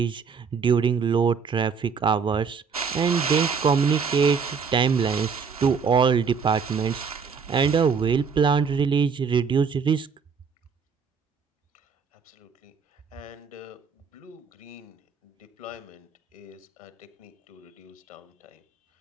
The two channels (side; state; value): left; quieter; 5.8 dB